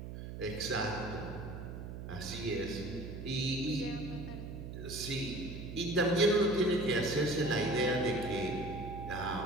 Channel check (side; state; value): right; noise; hum, 8 dB below the sound